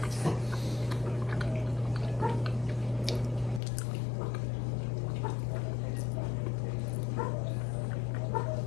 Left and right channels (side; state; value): right; drops out; at 3.6 s